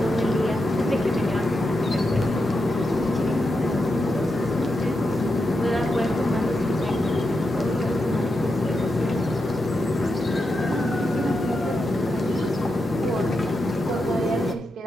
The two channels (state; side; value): normal; both; correlation 0.86